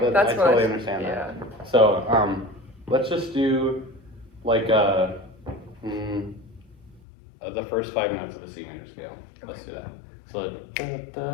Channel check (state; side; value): drops out; right; at 7.0 s